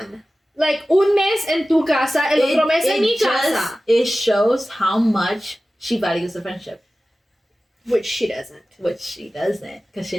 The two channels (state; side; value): normal; both; correlation 0.96